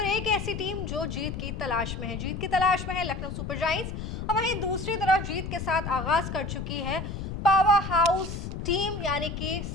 एक ऐसी टीम जो जीत की तलाश में है। जीत की तलाश में है लखनऊ सुपर जायंट्स और वहीं दूसरी तरफ जीत के साथ आगाज कर चुकी है पावर हाउस टीम यानी कि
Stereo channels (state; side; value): noise; left; rumble, 6 dB below the sound